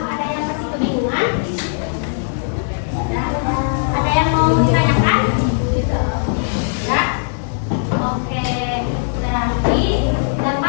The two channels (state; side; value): silent; right; digital silence